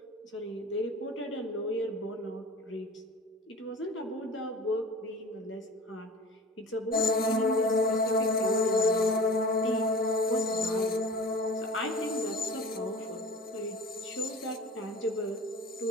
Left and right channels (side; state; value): both; normal; correlation 0.38